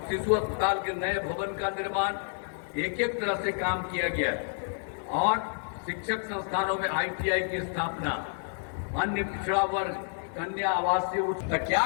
अस्पताल के नए भवन का निर्माण, एक एक तरह से काम किया गया है। और शिक्षक संस्थानों में आईटीआई की स्थापना, अन्य पिछड़ा वर्ग, कन्या आवासीय तो क्या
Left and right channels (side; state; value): right; silent; digital silence